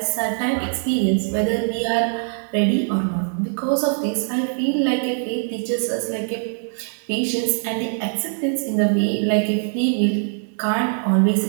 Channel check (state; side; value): silent; left; digital silence